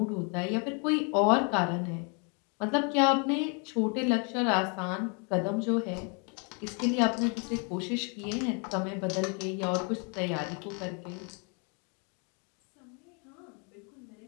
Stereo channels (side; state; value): right; quieter; 35.7 dB